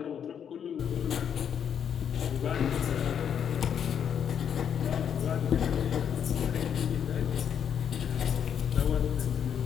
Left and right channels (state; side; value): quieter; right; 8.3 dB